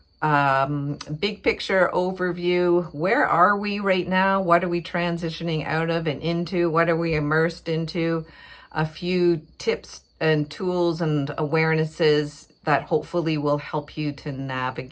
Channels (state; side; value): identical; both; correlation 1.00